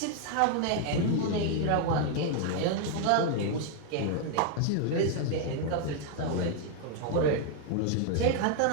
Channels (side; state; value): both; different; correlation 0.00